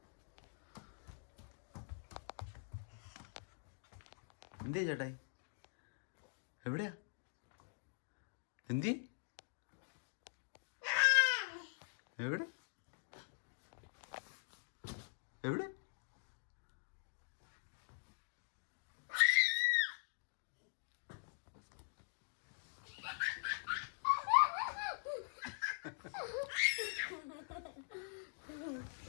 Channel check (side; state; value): right; silent; digital silence